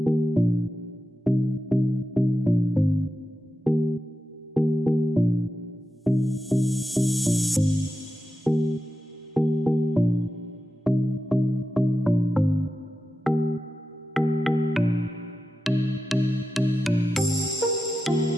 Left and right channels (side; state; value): both; normal; correlation 0.91